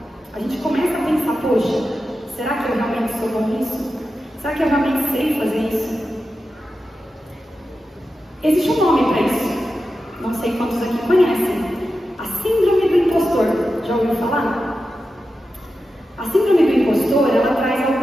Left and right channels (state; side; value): normal; both; correlation 0.91